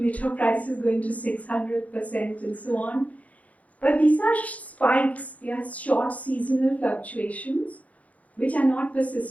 prices going to 600% and so on. But these are spikes, they are short seasonal fluctuations which are not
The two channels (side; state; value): right; late; 0.070 ms